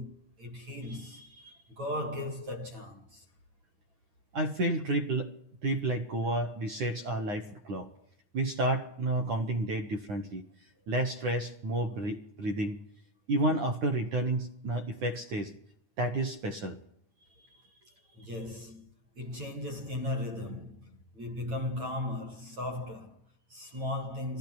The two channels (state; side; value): late; left; 9.0 ms